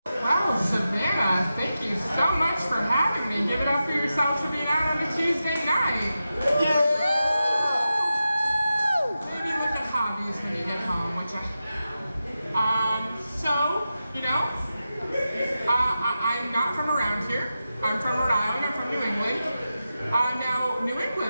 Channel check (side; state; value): both; inverted; correlation -0.91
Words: Well, Savannah, thank you so much for having me. Give it up for yourselves for being out on a Tuesday night. Yeah! Maybe look at hobbies when you get home, which I'm not from around here. I'm from Rhode Island, I'm from New England. Now, New